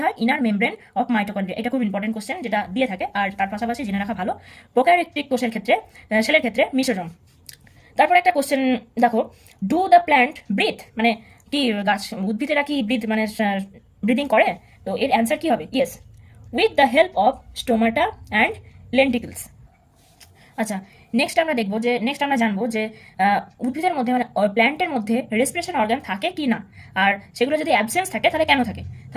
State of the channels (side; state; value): both; identical; correlation 1.00